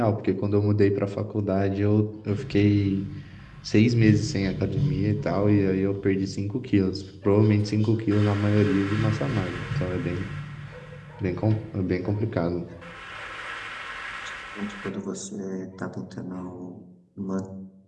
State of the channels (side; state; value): both; identical; correlation 1.00